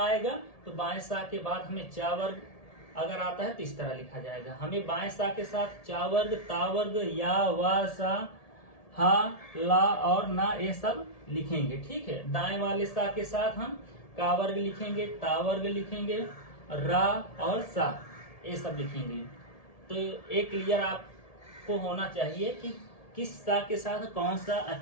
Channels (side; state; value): right; late; 1.7 ms